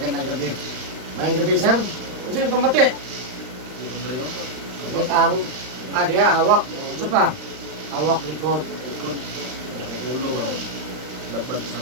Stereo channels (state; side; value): late; left; 39 ms